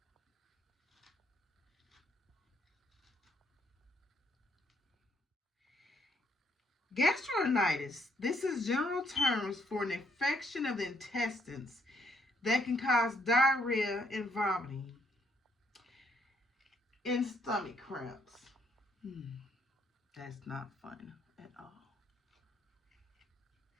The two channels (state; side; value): normal; both; correlation 0.71